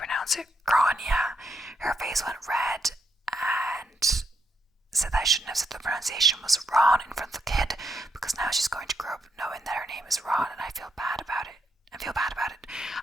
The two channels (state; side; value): normal; both; correlation 0.79